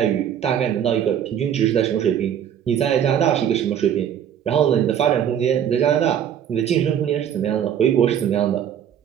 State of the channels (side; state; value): left; quieter; 9.4 dB